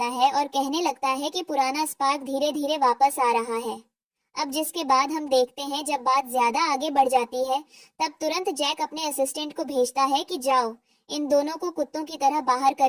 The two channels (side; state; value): both; identical; correlation 1.00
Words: है और कहने लगता है कि पुराना स्पार्क धीरे धीरे वापस आ रहा है। अब जिसके बाद हम देखते हैं जब बात ज्यादा आगे बढ़ जाती है, तब तुरंत जैक अपने असिस्टेंट को भेजता है कि जाओ इन दोनों को कुत्तों की तरह बाहर